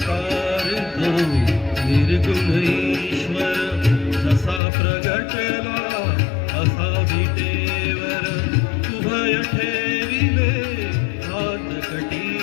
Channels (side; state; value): right; drops out; at 4.6 s